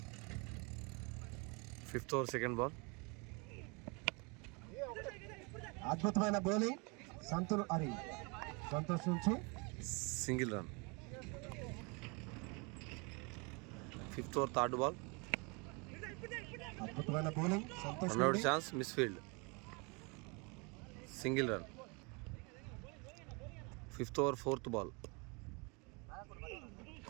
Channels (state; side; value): quieter; left; 30.6 dB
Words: 5th over second ball. అద్భుతమైన bowling. Santosh నుంచి single run. 5th over third ball. అద్భుతమైన bowling. Santosh run out chance. Misfield. Single run. 5th over fourth ball.